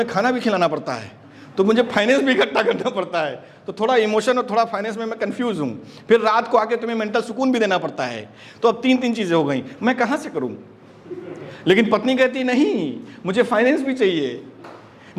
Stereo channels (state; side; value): identical; both; correlation 1.00